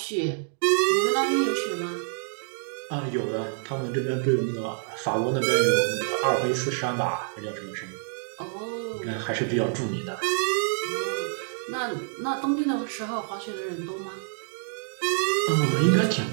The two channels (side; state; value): left; silent; 59 dB below the other